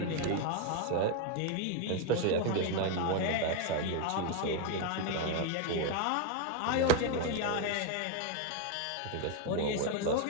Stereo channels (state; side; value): different; both; correlation 0.01